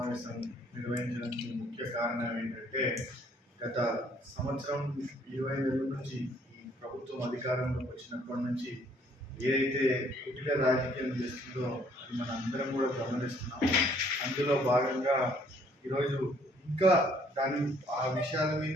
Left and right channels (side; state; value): both; normal; correlation 0.63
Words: నిర్వహించడానికి ముఖ్య కారణం ఏంటంటే గత సంవత్సరం 20 నెలల నుంచి ఈ ప్రభుత్వం అధికారంలోకి వచ్చినప్పటి నుంచి ఏదైతే కుటిల రాజకీయం చేస్తుందో అది మన అందరం కూడా గమనిస్తున్నాం. అందులో భాగంగా ఈరోజు ఇంకా ఆ విషయాల